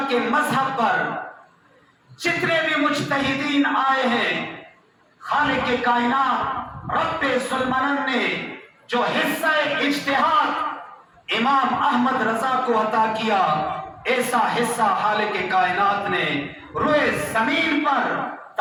کے مذہب پر جتنے بھی مجتہدین آئے ہیں، خالق کائنات رب ذوالمنن نے جو حصہ اجتہاد امام احمد رضا کو عطا کیا، ایسا حصہ خالق کائنات نے روئے زمین پر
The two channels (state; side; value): identical; both; correlation 1.00